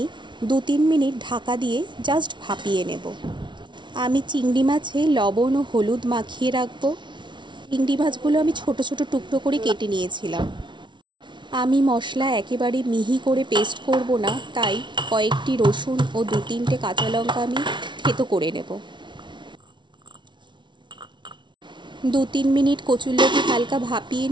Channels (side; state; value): left; late; 0.23 ms